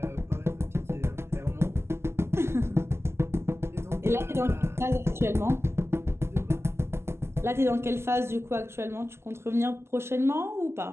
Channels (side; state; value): left; late; 0.12 ms